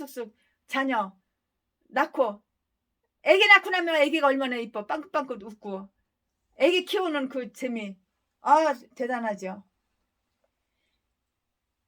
자녀 낳고 애기 낳고 나면 애기가 얼마나 이뻐. 빵긋빵긋 웃고 애기 키우는 그 재미. 대단하죠.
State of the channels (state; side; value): identical; both; correlation 1.00